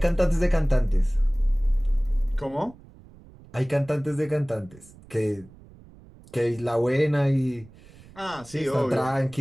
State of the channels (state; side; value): noise; right; rumble, 23 dB below the sound